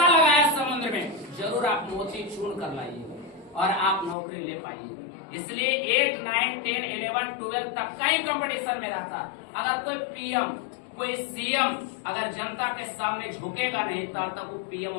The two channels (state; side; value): drops out; right; at 4.2 s